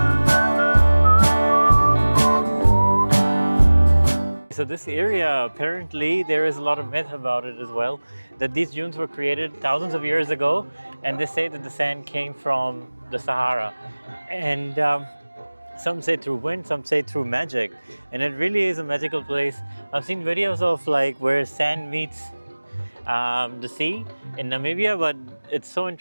So this area, apparently, there is a lot of myth about it as well, that these dunes were created thousands of years ago, and they say that the sand came from the Sahara. And some say through wind, some say through magic. And it really is a magical place. I've seen videos of like where sand meets the sea in Namibia, but it's so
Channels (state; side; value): inverted; both; correlation -1.00